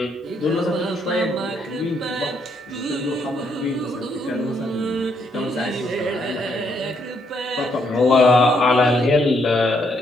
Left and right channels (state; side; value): normal; both; correlation 0.73